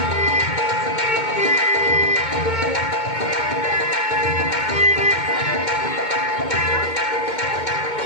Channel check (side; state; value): right; late; 2.2 ms